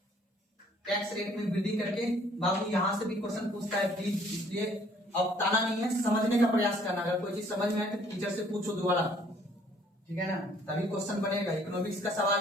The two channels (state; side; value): normal; both; correlation 0.60